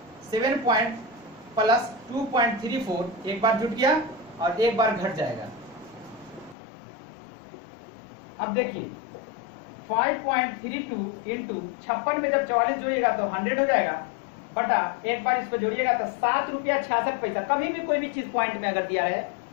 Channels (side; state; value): right; drops out; at 6.6 s